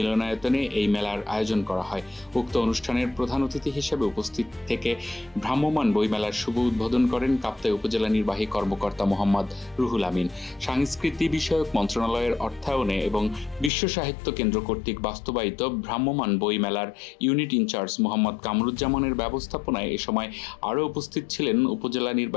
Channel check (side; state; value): right; drops out; at 13.7 s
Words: এই মেলার আয়োজন করা হয়। উক্ত অনুষ্ঠানের প্রধান অতিথি হিসেবে উপস্থিত থেকে ভ্রাম্যমাণ বইমেলার শুভ উদ্বোধন করেন কাপ্তাই উপজেলা নির্বাহী কর্মকর্তা মোহাম্মদ রুহুল আমিন। সাংস্কৃতি বিষয়ক মন্ত্রণালয়ের অর্থায়নে এবং বিশ্ব সাহিত্য কেন্দ্র কর্তৃক বাস্তবায়িত ভ্রাম্যমাণ বইমেলার ইউনিট ইনচার্জ মোহাম্মদ কামরুজ্জামানের ব্যবস্থাপনায় এ সময় আরও উপস্থিত ছিলেন উপজেলা